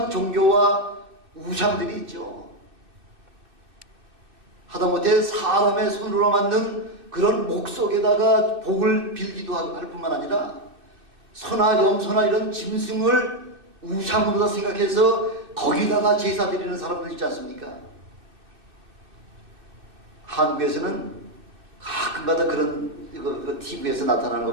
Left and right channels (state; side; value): late; left; 2.6 ms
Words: 종교와 우상들이 있죠. 하다못해 사람의 손으로 만든 그런 목 속에다가 복을 빌기도 할 뿐만 아니라 소나 염소나 이런 짐승을 우상으로 생각해서 거기다가 제사 드리는 사람들 있지 않습니까? 한국에서는 가끔가다 그런 TV에서 나타나는 거